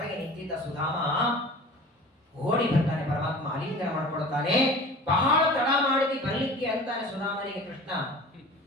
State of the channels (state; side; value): normal; both; correlation 0.40